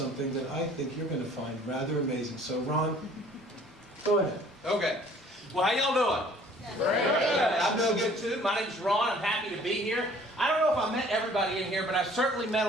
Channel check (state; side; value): normal; both; correlation 0.54